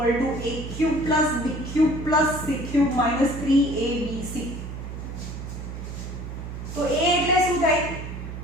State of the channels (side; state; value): right; noise; hum, 8 dB below the sound